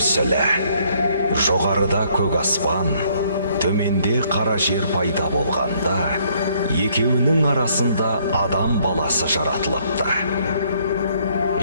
Жоғарыда көк аспан, төменде қара жер пайда болғанда, екеуінің арасында адам баласы жаратылыпты.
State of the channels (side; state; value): both; inverted; correlation -0.67